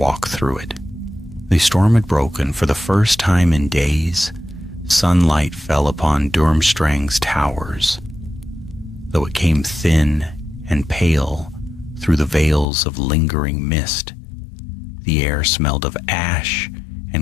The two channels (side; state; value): right; drops out; at 12.7 s